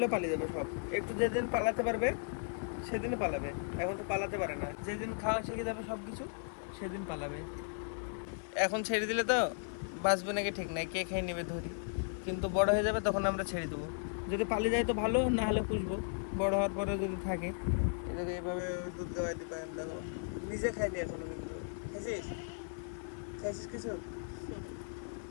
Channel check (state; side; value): silent; right; 54 dB below the other